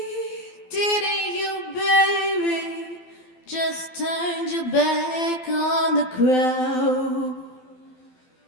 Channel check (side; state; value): right; late; 12 ms